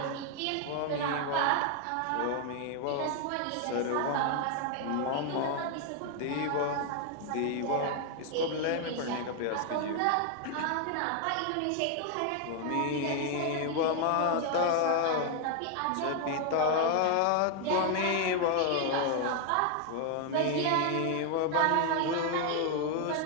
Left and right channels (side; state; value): both; different; correlation 0.00